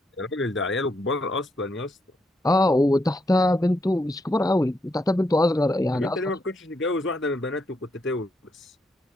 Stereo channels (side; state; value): both; normal; correlation 0.78